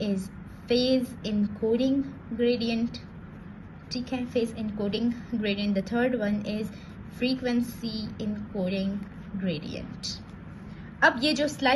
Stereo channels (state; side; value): identical; both; correlation 1.00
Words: is phase encoding gradient, ठीक है, phase encoding gradient. The third one is frequency encoding gradient. अब ये जो